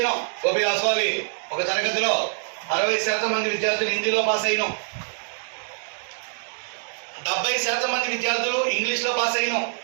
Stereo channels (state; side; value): silent; left; 62 dB below the other